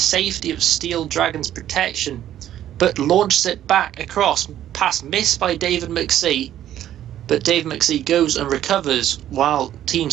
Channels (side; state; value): left; quieter; 11.8 dB